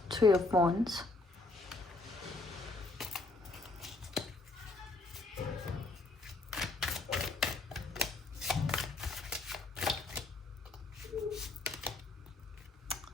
Three of Wands,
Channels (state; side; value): quieter; right; 3.2 dB